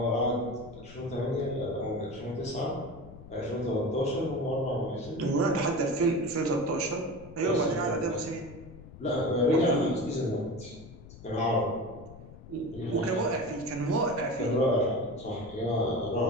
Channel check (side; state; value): left; noise; rumble, 17 dB below the sound